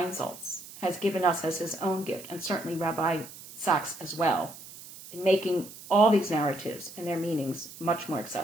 has given us as his own gift, and certainly Rabbi Sachs as well, in making all these narratives and their meanings much more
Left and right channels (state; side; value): noise; right; hiss, 16 dB below the sound